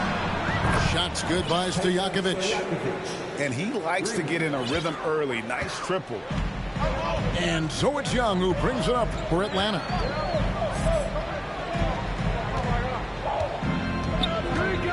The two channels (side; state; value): both; identical; correlation 1.00